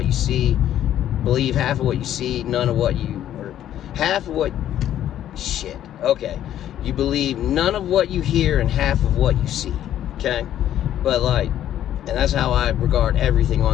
you see, believe half of what you see, none of what you, or half of what, shit, okay. You believe none of what you hear and half of what you see, okay? But like, and that's how I regard everything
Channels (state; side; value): quieter; right; 11.4 dB